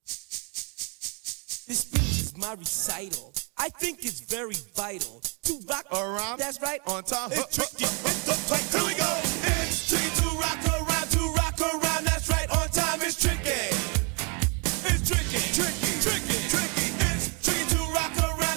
my recital. I think it's very vital to rock around. That's right, on time. It's tricky. Here we go. It's tricky to rock around, that's right, on time. It's tricky. It's tricky. It's tricky to rock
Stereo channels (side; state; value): left; quieter; 35.0 dB